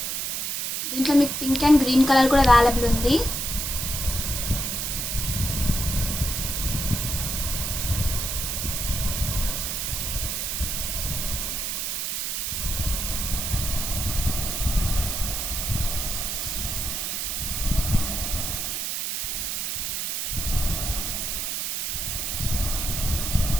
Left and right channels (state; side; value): noise; right; hiss, 1 dB below the sound